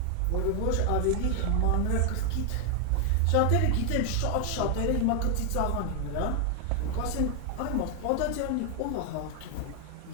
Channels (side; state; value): both; different; correlation 0.00